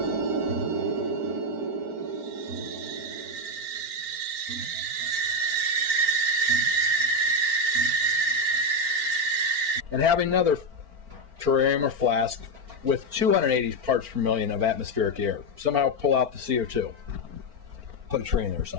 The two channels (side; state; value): left; late; 4.4 ms